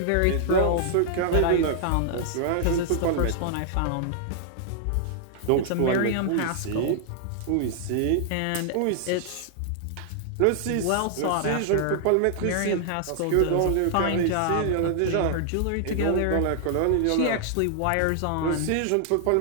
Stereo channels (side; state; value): both; different; correlation -0.01